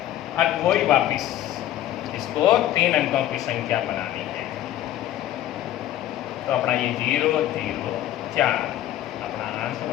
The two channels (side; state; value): right; quieter; 12.8 dB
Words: अब वही वापिस इसको 3 अंकों की संख्या बनानी है। तो अपना ये 0, 0, 4 अपना आंसर